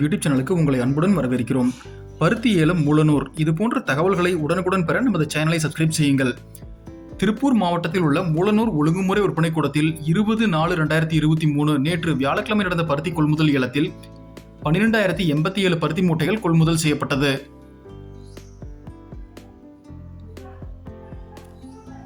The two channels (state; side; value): identical; both; correlation 1.00